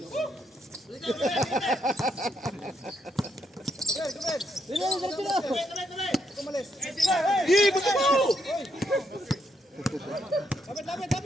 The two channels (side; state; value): both; normal; correlation 0.77